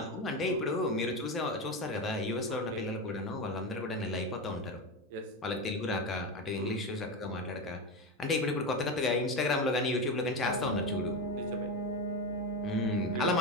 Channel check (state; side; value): normal; both; correlation 0.17